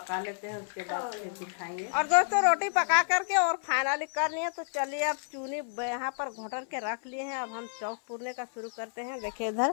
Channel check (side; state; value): right; silent; 57 dB below the other